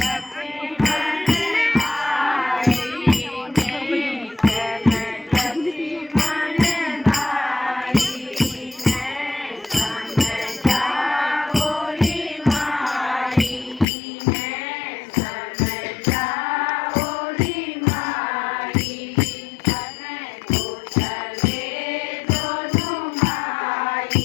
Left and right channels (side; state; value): right; drops out; at 13.9 s